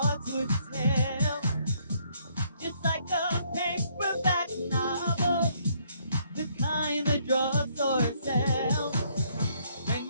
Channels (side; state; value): both; inverted; correlation -0.68